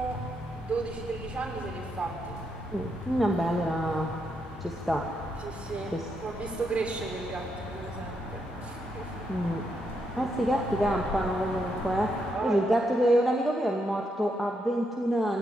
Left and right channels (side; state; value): both; normal; correlation 0.80